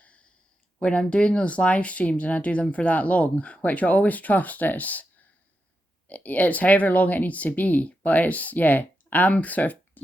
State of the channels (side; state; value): both; normal; correlation 0.87